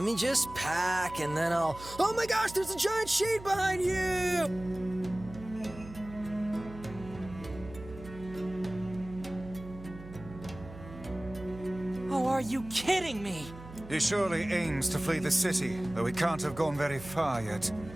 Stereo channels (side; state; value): right; noise; hum, 15 dB below the sound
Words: me just pack and then I'll... Oh my gosh, there's a giant shade behind you! Oh, are you kidding me? He surely aims to flee the city, though he can't have gone very far yet.